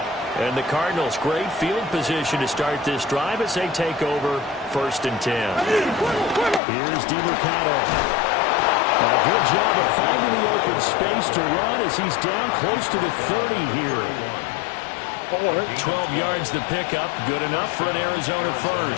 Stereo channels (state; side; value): drops out; right; at 6.6 s